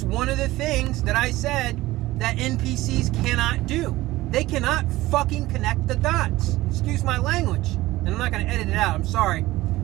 one of the things that I said that NPCs cannot do. They cannot fucking connect the dots. Excuse my language. And I'm not going to edit it out, I'm sorry.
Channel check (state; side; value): quieter; left; 17.8 dB